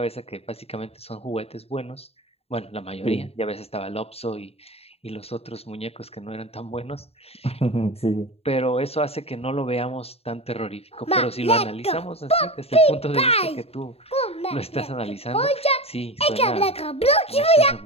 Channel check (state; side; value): late; right; 0.29 ms